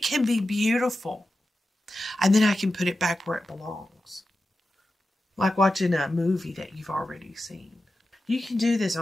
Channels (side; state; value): both; normal; correlation 0.92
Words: can be beautiful. And then I can put it back where it belongs. Like watching a movie that you've already seen. You can do this